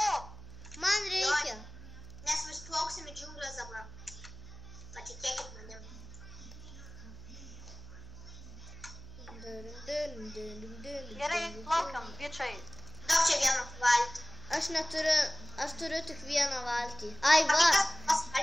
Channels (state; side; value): noise; right; hum, 15 dB below the sound